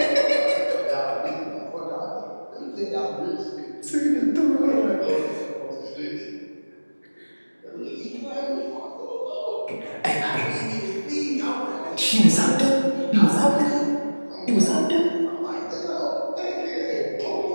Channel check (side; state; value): both; inverted; correlation -1.00